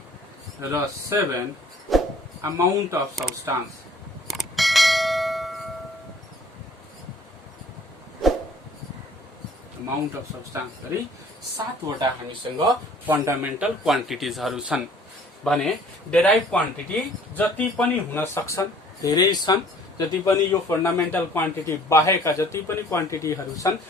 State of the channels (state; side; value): normal; both; correlation 0.54